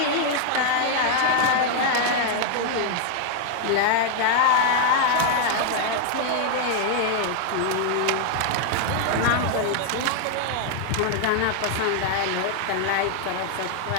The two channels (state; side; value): different; both; correlation 0.00